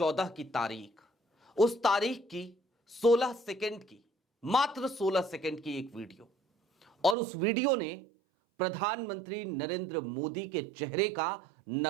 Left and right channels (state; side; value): drops out; left; at 7.2 s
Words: की तारीख, उस तारीख की 16 सेकंड की, मात्र 16 सेकंड की एक वीडियो, और उस वीडियो ने प्रधानमंत्री नरेंद्र मोदी के चेहरे का